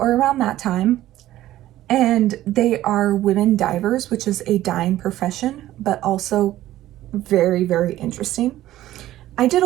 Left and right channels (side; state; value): left; quieter; 14.4 dB